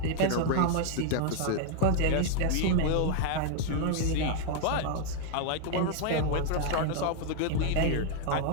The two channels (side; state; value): both; different; correlation 0.00